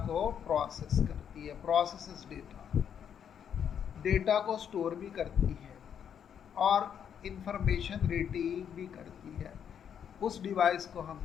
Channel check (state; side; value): quieter; right; 8.3 dB